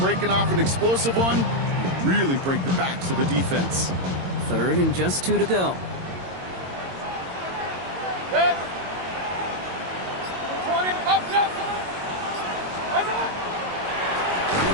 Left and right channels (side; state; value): left; late; 22 ms